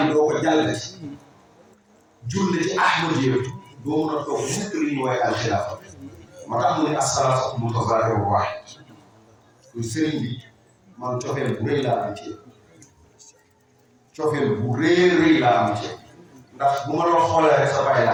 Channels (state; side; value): identical; both; correlation 1.00